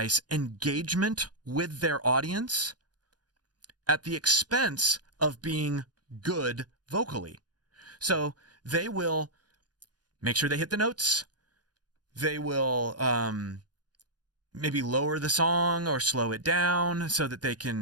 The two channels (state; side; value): late; left; 0.69 ms